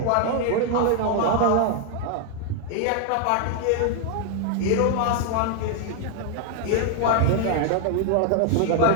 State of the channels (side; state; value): both; different; correlation 0.00